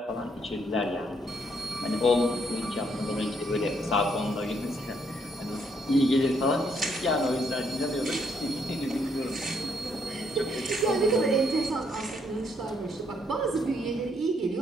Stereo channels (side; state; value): both; normal; correlation 0.72